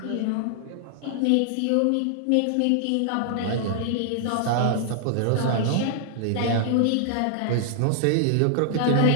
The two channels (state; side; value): different; both; correlation -0.01